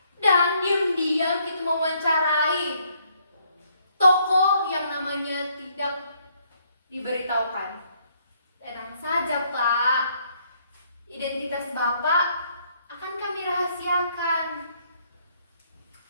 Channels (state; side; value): inverted; both; correlation -0.69